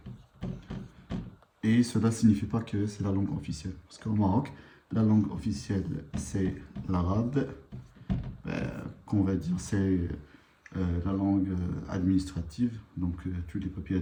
Et cela ne signifie pas que c'est la langue officielle. Parce qu'au Maroc, la langue officielle, c'est l'arabe. Qu'on va dire, c'est la langue administrative. Donc, tous les papiers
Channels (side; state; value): both; identical; correlation 1.00